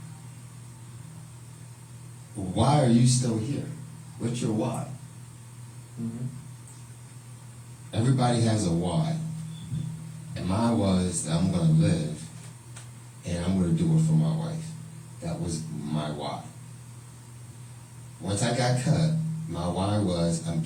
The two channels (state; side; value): identical; both; correlation 1.00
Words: Why are you still here? What's your why? Mm-hmm. Everybody has a why. And mine was that I'm going to live and I'm going to do it for my wife. That was my why. Once I got cut, my why was I'm